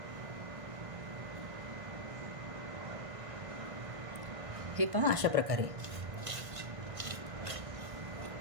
हे पहा अशा प्रकारे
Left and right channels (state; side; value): late; left; 1.6 ms